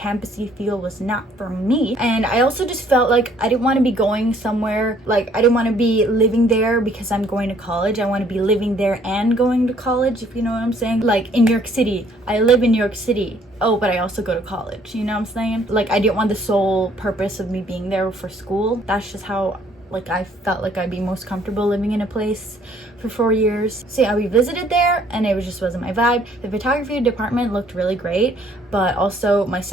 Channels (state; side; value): normal; both; correlation 0.62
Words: feel was not for me. And I also just felt like I didn't want to be going somewhere, like I didn't want to be living there because I'm going to college. I want to be living there and going to college, if you know what I'm saying. Like, in New York City, I live in New York City. Oh, but I also go to college, you know what I'm saying? Like, I didn't want the sole purpose of me being there for school. That's just how, like, I felt like I'd be most comfortable living in a place for 4 years. So yeah, we visited there, and it just wasn't my vibe. The photography department looked really great, but also my